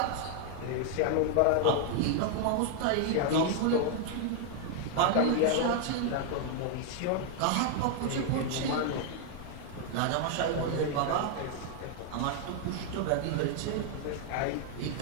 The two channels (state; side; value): different; both; correlation 0.00